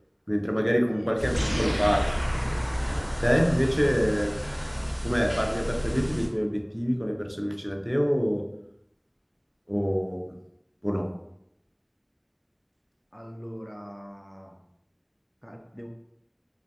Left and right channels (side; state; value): both; identical; correlation 1.00